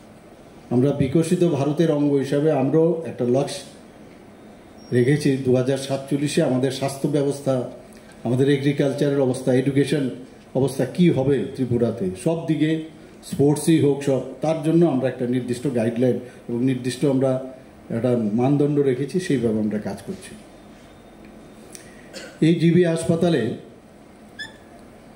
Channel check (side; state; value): both; identical; correlation 1.00